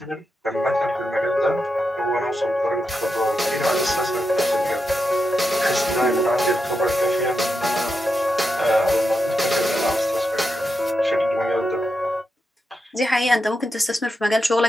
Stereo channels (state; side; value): normal; both; correlation 0.86